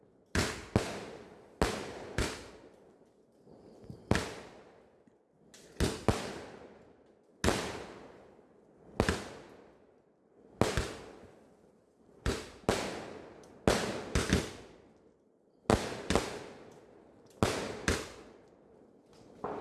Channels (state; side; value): identical; both; correlation 1.00